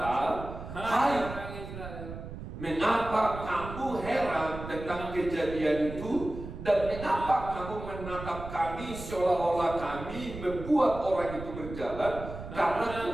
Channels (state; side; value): noise; right; rumble, 10 dB below the sound